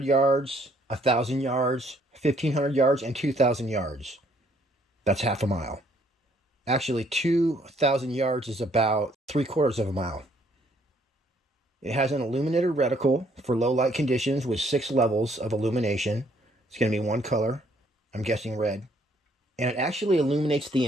yards, 1,000 yards, 1,500 yards, and 2,000 yards. That's half a mile. Actually, 2,000 yards is about 3/4 of a mile. It has an illuminated reticle for low light conditions with 6 levels of illumination. It's going to be one color, I'm guessing red. And it actually illuminates the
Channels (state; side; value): normal; both; correlation 0.66